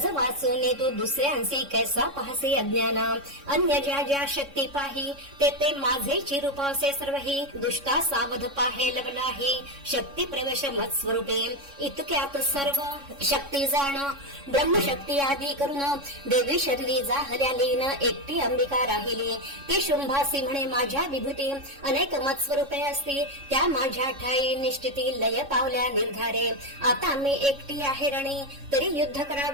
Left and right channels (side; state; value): left; late; 3.6 ms